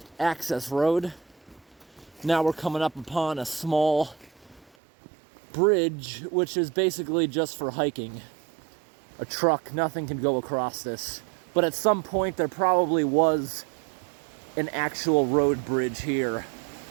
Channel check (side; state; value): left; drops out; at 4.7 s